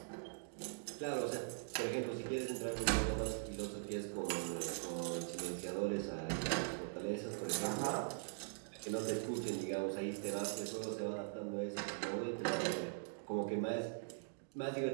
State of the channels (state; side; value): silent; left; digital silence